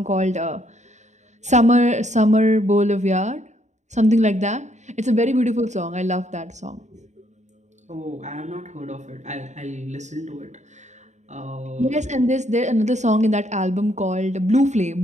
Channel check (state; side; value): late; left; 0.34 ms